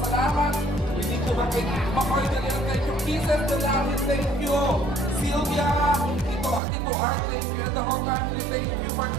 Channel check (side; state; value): left; drops out; at 6.6 s